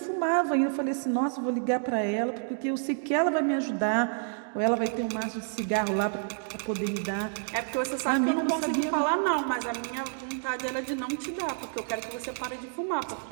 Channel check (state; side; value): silent; left; digital silence